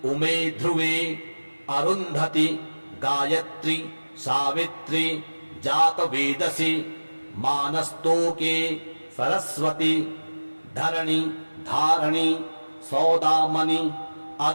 उमे ध्रुवे अरुन्धति गायत्री सावित्री जातवेदसि मानस्तोके सरस्वती धरणी धारणी सौदामणि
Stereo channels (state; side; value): inverted; both; correlation -1.00